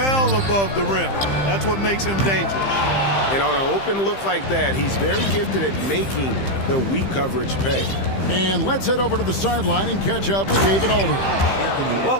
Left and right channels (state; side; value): late; right; 15 ms